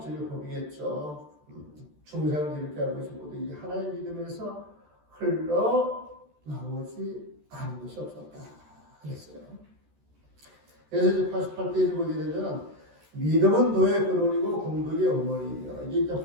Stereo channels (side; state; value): left; late; 14 ms